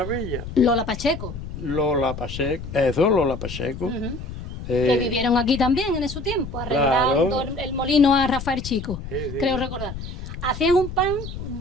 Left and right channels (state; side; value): noise; left; rumble, 9 dB below the sound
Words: Lola Pacheco. Lola Pacheco, eso, Lola Pacheco. Que vivieron aquí también en su tiempo, arreglando el molino a Rafael Chico, creo recordar. Hacían un pan